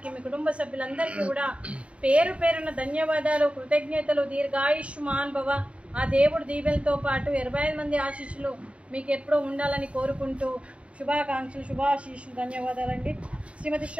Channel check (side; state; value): left; late; 0.061 ms